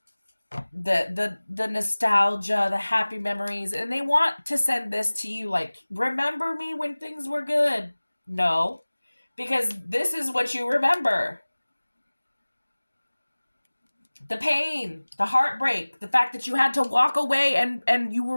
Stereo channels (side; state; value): both; inverted; correlation -1.00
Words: the nostalgia, the happy memories, and they want to send this to you like, remember me when things were good. No, because this is what you remember. The pain, the heartbreak, the fact that you had to walk away and you